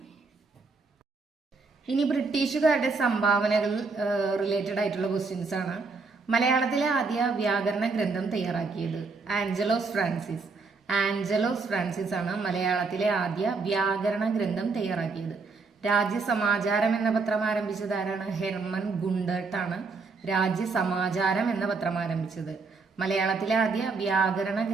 ഇനി ബ്രിട്ടീഷുകാരുടെ സംഭാവനകൾ റിലേറ്റഡ് ആയിട്ടുള്ള ക്വസ്റ്റ്യൻസ് ആണ്. മലയാളത്തിലെ ആദ്യ വ്യാകരണ ഗ്രന്ഥം തയ്യാറാക്കിയത് ആഞ്ചലോസ് ഫ്രാൻസിസ് ആണ് മലയാളത്തിലെ ആദ്യ വ്യാകരണ ഗ്രന്ഥം തയ്യാറാക്കിയത്. രാജ്യസമാചാരം എന്ന പത്രം ആരംഭിച്ചത് ആരാണ്? ഹെർമൻ ഗുണ്ടർട്ട് ആണ് രാജ്യസമാചാരം എന്ന പത്രം ആരംഭിച്ചത്. മലയാളത്തിലെ ആദ്യ വ്യാകരണ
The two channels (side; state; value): left; quieter; 4.3 dB